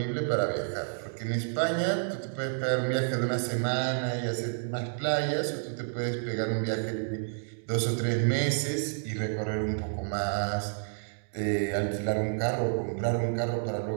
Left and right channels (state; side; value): silent; left; digital silence